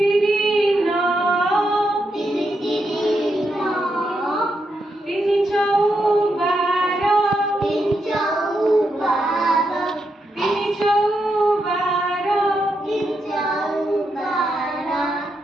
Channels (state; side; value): normal; both; correlation 0.83